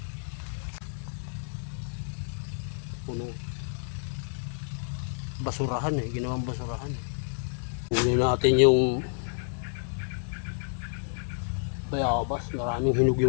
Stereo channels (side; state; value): right; silent; digital silence